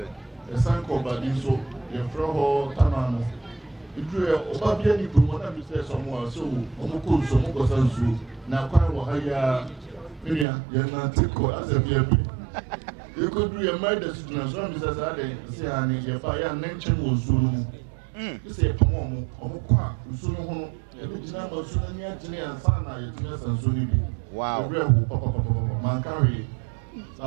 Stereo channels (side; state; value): left; drops out; at 10.5 s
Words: A sign called by Dinso. Your friend Tanano. If you are Obabiani, you want to say someone so, Omuku, so Mokosansu, now quite Wahaya, Miriam, you're not as a baby. You could do a murder situation as I say, your fire nature was soon. You say, Pomomo, Omukwa, Suno, original Sunia, and Sana, and Suni. Wow, Mankari,